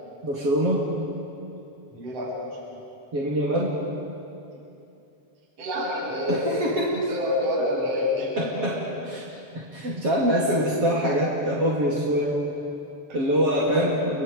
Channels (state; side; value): late; left; 7.4 ms